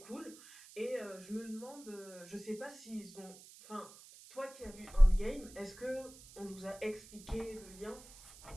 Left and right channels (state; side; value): noise; right; hiss, 19 dB below the sound